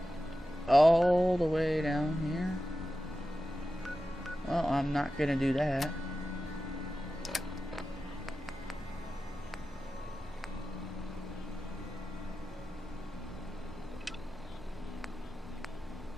All the way down here? Well, I'm not gonna do that.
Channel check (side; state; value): both; normal; correlation 0.93